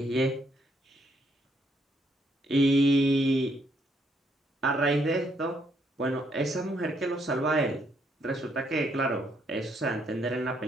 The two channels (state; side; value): normal; both; correlation 0.72